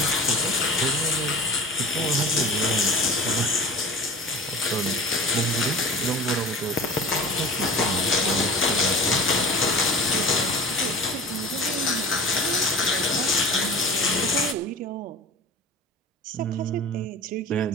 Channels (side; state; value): both; normal; correlation 0.37